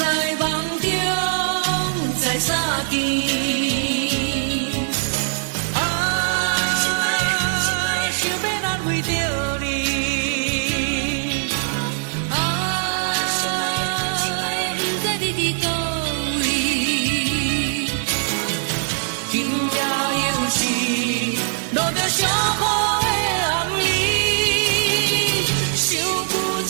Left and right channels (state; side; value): silent; left; digital silence